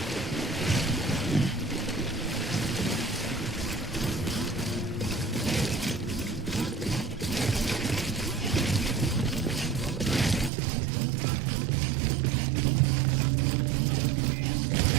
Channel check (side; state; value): left; drops out; at 10.5 s